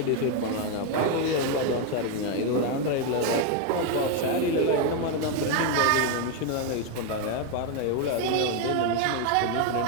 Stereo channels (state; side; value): different; both; correlation 0.01